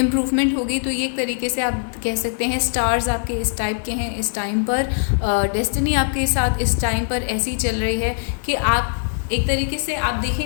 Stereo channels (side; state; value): right; silent; 65 dB below the other